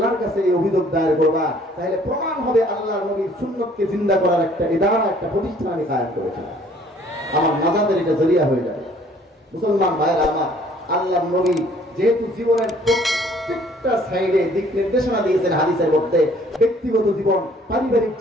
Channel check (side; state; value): both; normal; correlation 0.58